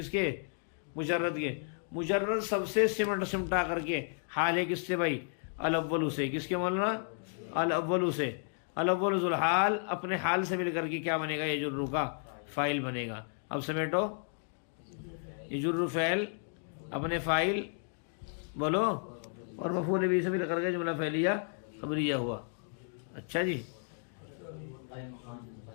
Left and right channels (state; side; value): silent; right; 56 dB below the other